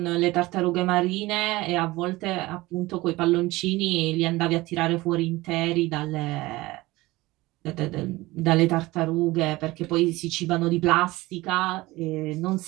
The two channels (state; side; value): quieter; left; 19.8 dB